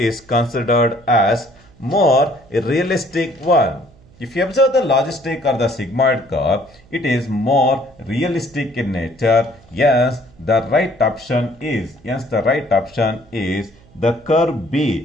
considered as more realistic one? If you observe the logistic or the sigmoid curve, it is more realistic in nature. Yes, the right option is, the curve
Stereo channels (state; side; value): noise; right; hum, 27 dB below the sound